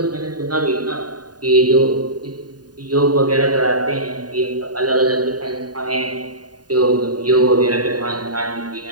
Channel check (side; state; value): left; late; 0.69 ms